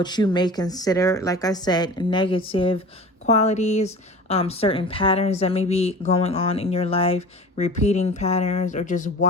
you may consider, like I said, negative qualities, certain patterns that may be going on in your life, repeating patterns, or just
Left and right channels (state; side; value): normal; both; correlation 0.38